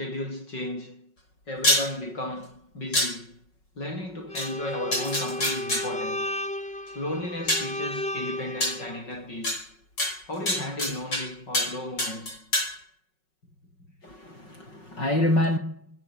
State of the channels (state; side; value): late; right; 5.4 ms